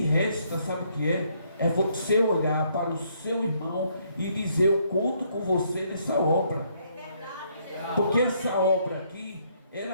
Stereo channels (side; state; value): both; inverted; correlation -0.70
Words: resta, sabe o que é? É você olhar para o seu irmão e dizer: eu conto com você nessa obra. Porque essa obra aqui,